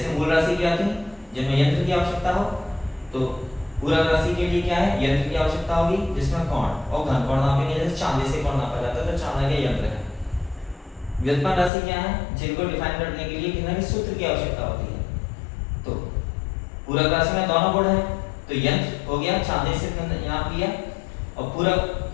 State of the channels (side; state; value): right; drops out; at 11.7 s